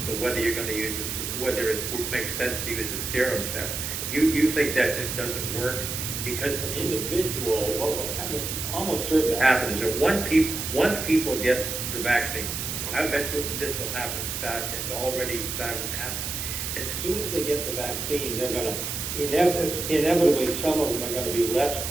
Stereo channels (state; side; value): noise; right; hiss, 4 dB below the sound